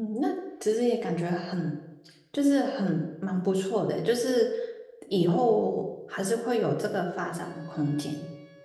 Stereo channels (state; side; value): identical; both; correlation 1.00